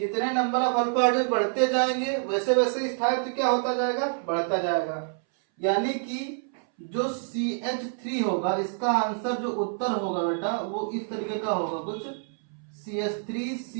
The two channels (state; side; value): silent; left; 60 dB below the other